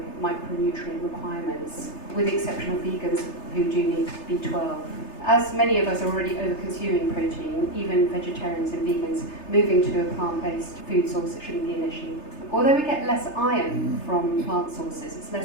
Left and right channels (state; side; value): late; right; 3.3 ms